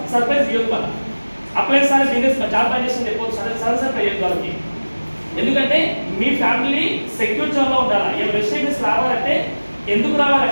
సర్ప్రైజ్ ఇవ్వదు మనం. అప్లైన్స్ అనేది బిజినెస్ జాబ్ ట్రాన్సాక్షన్ చెప్పవచ్చు, సరసరి అయ్యేది వాళ్ళకి. ఎందుకంటే మీ ఫ్యామిలీ సెక్యూర్ జోన్లో ఉండాలి. ఈ వెస్టేజ్ రావాలంటే ఎందుకు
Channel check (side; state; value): both; inverted; correlation -1.00